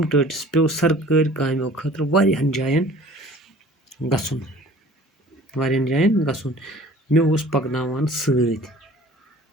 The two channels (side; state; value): both; normal; correlation 0.48